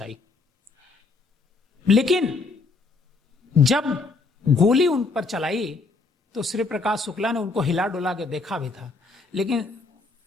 लेकिन जब गोली उन पर चलाई तो श्री प्रकाश शुक्ला ने उनको हिला डुला के देखा भी था, लेकिन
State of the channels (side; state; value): right; quieter; 3.9 dB